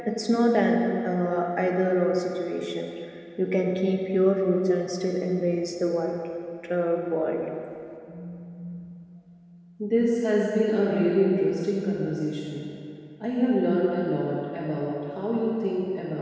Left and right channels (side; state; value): both; identical; correlation 1.00